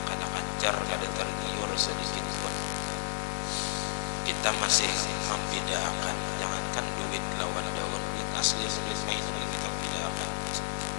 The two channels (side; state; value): right; silent; digital silence